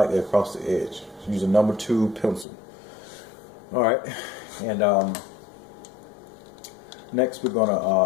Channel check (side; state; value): right; drops out; at 2.5 s